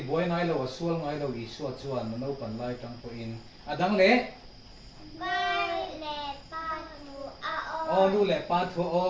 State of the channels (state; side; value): identical; both; correlation 1.00